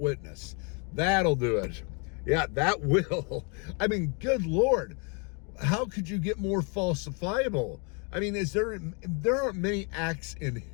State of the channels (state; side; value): quieter; right; 35.0 dB